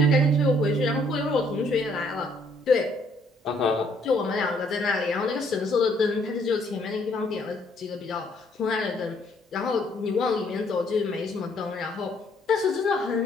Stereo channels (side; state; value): both; normal; correlation 0.66